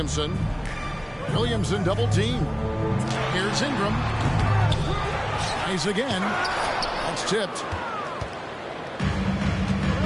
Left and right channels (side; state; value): both; identical; correlation 1.00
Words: Williamson double team. Here's Ingram. Nice again. That's tipped.